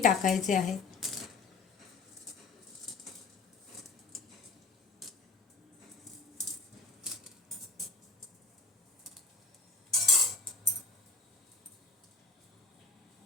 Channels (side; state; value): right; quieter; 4.0 dB